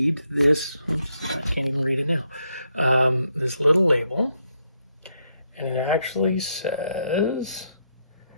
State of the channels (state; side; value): inverted; both; correlation -0.78